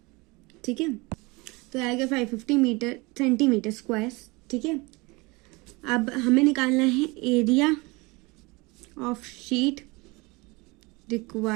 ठीक है, तो आएगा 550 सेंटीमीटर स्क्वायर। ठीक है, अब हमें निकालना है area of sheet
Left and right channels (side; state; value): left; quieter; 25.2 dB